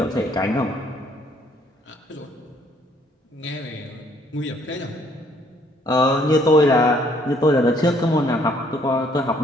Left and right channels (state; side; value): normal; both; correlation 0.64